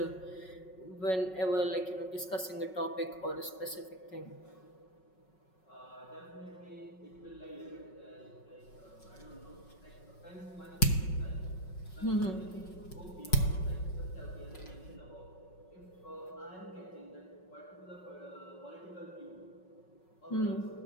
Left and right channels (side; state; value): right; late; 5.4 ms